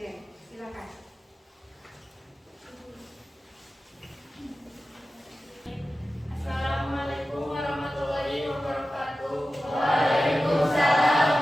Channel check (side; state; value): both; normal; correlation 0.94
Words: Silakan. Assalamualaikum warahmatullahi wabarakatuh. Waalaikumsalam